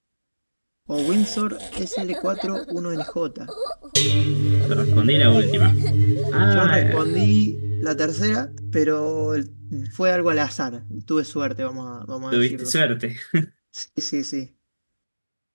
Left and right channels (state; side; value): inverted; both; correlation -1.00